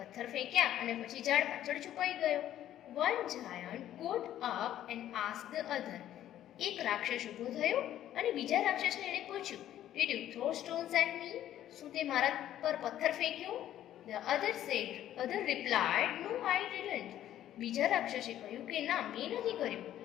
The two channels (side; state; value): right; quieter; 12.0 dB